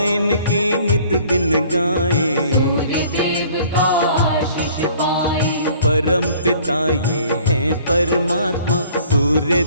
इनकी नित दिन गाए, सूर्य देव का आशीष पाए। परम पिता ये हैं परमात्मा, सूर्य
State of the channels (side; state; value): both; inverted; correlation -0.54